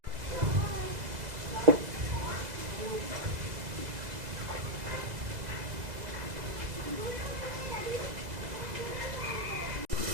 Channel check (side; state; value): left; late; 2.0 ms